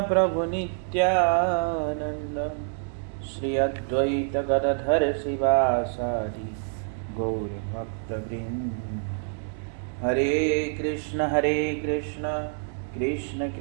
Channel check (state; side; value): silent; left; 60 dB below the other